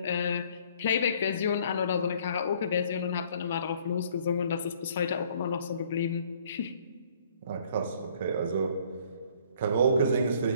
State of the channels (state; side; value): inverted; both; correlation -0.60